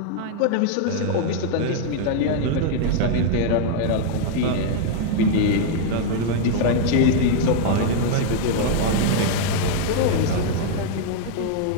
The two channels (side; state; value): both; different; correlation 0.00